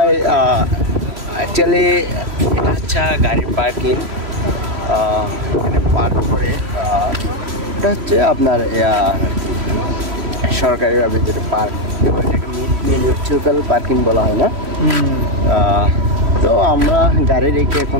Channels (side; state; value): left; late; 3.1 ms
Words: অ্যাকচুয়ালি এটা হচ্ছে গাড়ির পার্কিং, এখানে পার্ক করে এটা হচ্ছে আপনার সরকারিভাবে যেটা পার্ক, এটাকে মিউনিসিপ্যাল পার্কিং বলা হয় না। তো আমরা গাড়ি রেখে